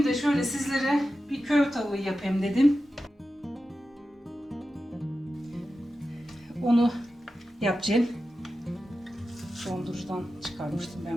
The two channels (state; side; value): normal; both; correlation 0.92